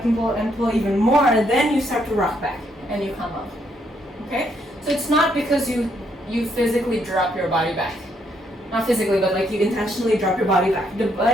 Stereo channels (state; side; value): normal; both; correlation 0.73